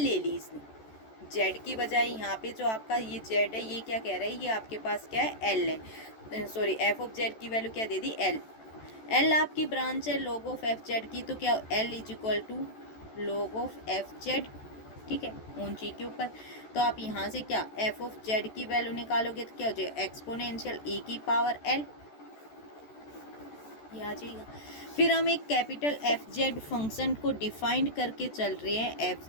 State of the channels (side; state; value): right; late; 14 ms